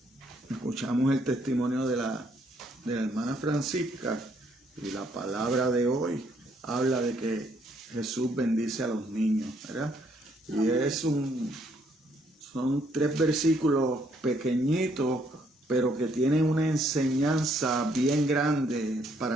escuchamos el testimonio de la hermana Francisca y la palabra de hoy habla de que Jesús bendice a los niños, ¿verdad? Y son 3 versículos pequeñitos, pero que tienen una enseñanza bien grande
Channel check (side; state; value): both; normal; correlation 0.69